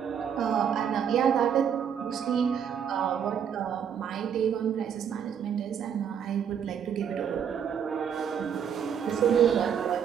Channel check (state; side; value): quieter; left; 8.1 dB